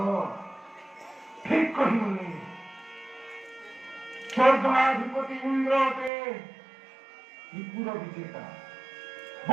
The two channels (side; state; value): left; drops out; at 6.1 s